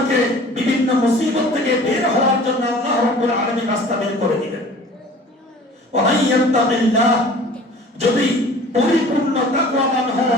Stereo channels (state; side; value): normal; both; correlation 0.46